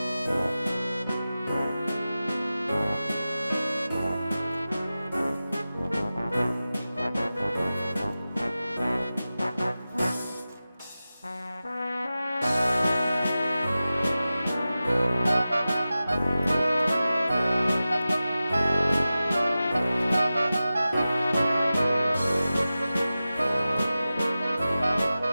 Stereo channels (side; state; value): both; inverted; correlation -0.95